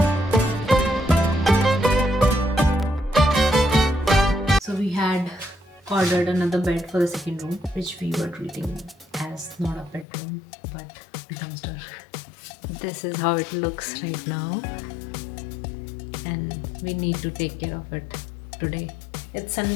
So we had ordered another bed for the second room, which we were treating as not a bedroom but a dumpster. This is how it looks right now, and we need to take care of it today. It's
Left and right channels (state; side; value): drops out; right; at 10.1 s